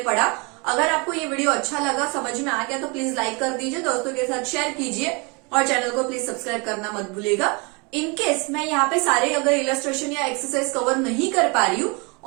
पढ़ा। अगर आपको ये वीडियो अच्छा लगा, समझ में आ गया, तो प्लीज लाइक कर दीजिए, दोस्तों के साथ शेयर कीजिए और चैनल को प्लीज सब्सक्राइब करना मत भूलिएगा। इनकेस मैं यहाँ पे सारे अगर इलस्ट्रेशन या एक्सरसाइज कवर नहीं कर पा रही हूँ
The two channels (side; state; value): left; quieter; 30.5 dB